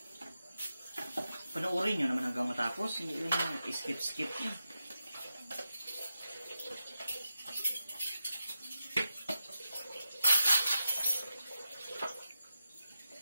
Panoorin nyo naman hanggang matapos. Hindi lang yung skip-skip nyo.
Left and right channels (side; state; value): both; inverted; correlation -0.89